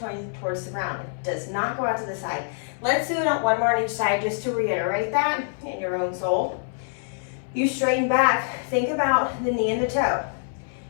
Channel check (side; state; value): right; silent; 62 dB below the other